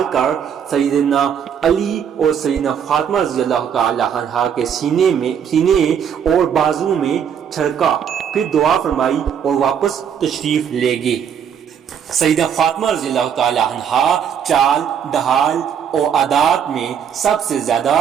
کر سیدنا علی اور سیدنا فاطمہ رضی اللہ تعالی عنہ کے سینے اور بازو میں چھڑکا، پھر دعا فرمائی اور واپس تشریف لے گئے۔ سیدہ فاطمہ رضی اللہ تعالی عنہ چال، ڈھال اور عادات میں سب سے زیادہ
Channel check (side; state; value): left; quieter; 8.1 dB